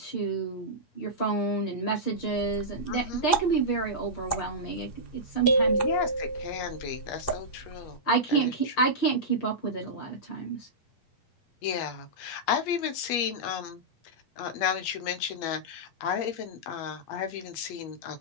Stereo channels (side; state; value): right; late; 8.4 ms